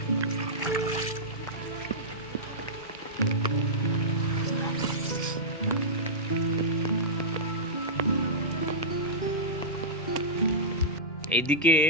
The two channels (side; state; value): both; normal; correlation -0.12